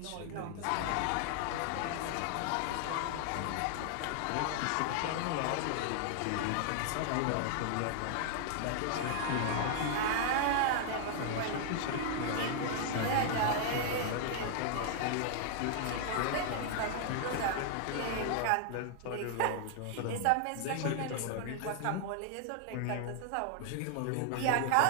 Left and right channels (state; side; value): different; both; correlation 0.00